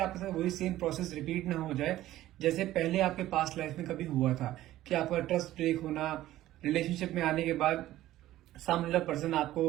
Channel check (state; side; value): quieter; left; 14.7 dB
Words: साथ वही सेम प्रोसेस रिपीट ना हो जाए जैसे पहले आपके पास्ट लाइफ में कभी हुआ था, कि आपका ट्रस्ट ब्रेक होना, रिलेशनशिप में आने के बाद सामने वाला पर्सन